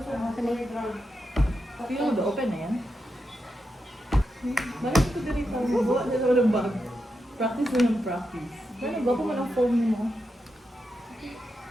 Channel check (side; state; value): both; normal; correlation 0.86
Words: mo, open na yan. Balik ko dito. Buwa na naman ang bag. Practice na ng practice. Ano ba kung anong phone mo?